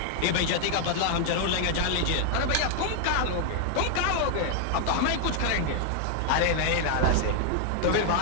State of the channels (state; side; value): different; both; correlation 0.00